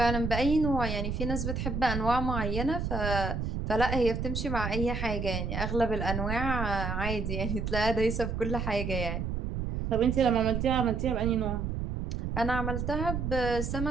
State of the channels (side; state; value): right; noise; rumble, 2 dB below the sound